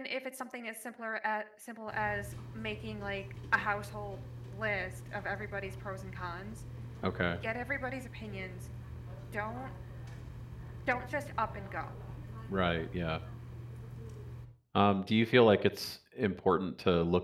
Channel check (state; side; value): identical; both; correlation 1.00